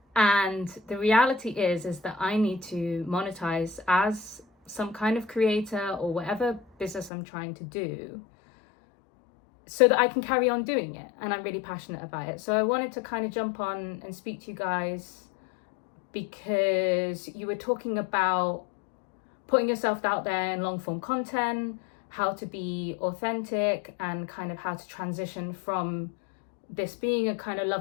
And the reality is that I need to monetize as some kind of creator or whatever business I'm trying to do, so that I can carry on doing it. And I'm really passionate about it. So I wanted to kind of jump on and speak to you guys, because you were talking about putting yourself out there in long form content, how to be authentic, and kind of how to transition from this being a kind of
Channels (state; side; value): drops out; right; at 7.1 s